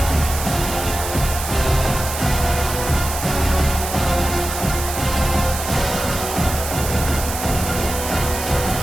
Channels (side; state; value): right; noise; hiss, 7 dB below the sound